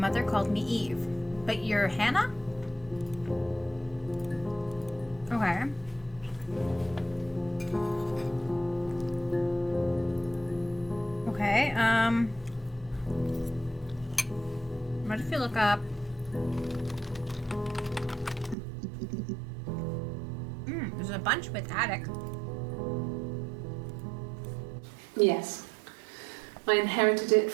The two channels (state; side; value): drops out; left; at 18.6 s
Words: called me Eve. But you're Hannah? Okay. Okay, what if you look up... there's a bunch with attic. Yes. I inherited it